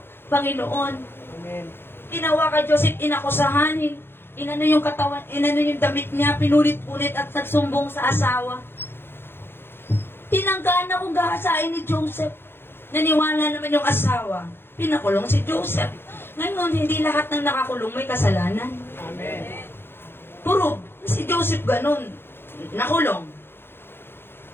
Panginoon. Amen. Ginawa kay Joseph, inakusahan. Inano yung katawan, inano yung damit niya, pinulit-ulit at nagsumbong sa asawa. Tinanggaan na kung gahasain ni Joseph. Naniwala naman yung asawa. Pinakulong si Joseph. Ngayon, hindi lahat ng nakakulong may kasalanan. Amen. Puro, si Joseph ganun. Nakulong.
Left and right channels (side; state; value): right; late; 0.11 ms